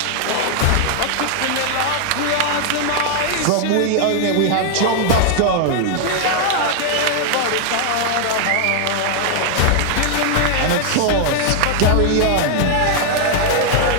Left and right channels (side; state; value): both; different; correlation 0.00